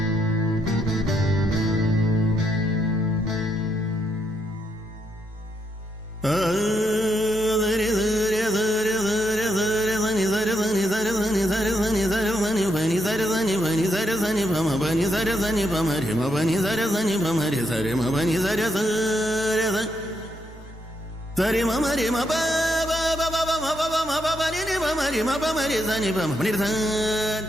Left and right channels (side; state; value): both; normal; correlation 0.78